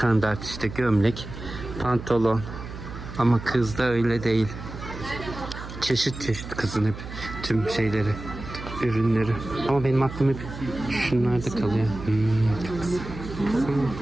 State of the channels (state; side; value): noise; right; hum, 11 dB below the sound